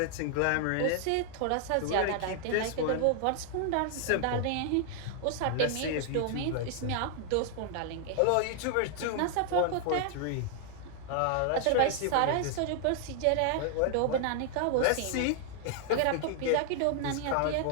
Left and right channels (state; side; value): different; both; correlation 0.00